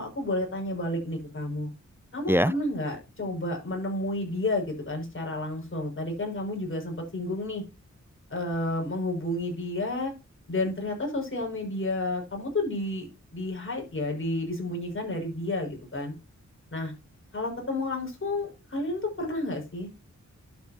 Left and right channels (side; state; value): both; normal; correlation 0.28